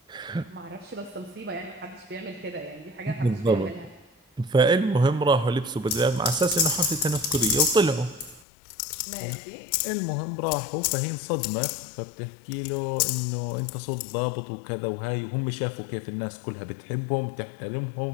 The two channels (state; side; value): drops out; right; at 8.4 s